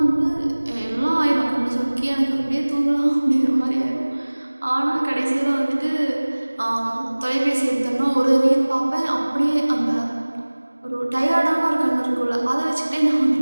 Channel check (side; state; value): both; inverted; correlation -1.00